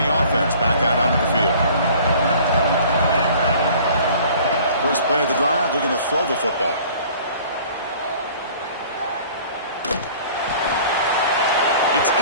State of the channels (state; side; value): inverted; both; correlation -0.50